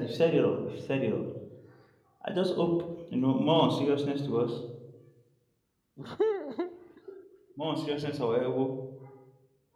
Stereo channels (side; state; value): both; identical; correlation 1.00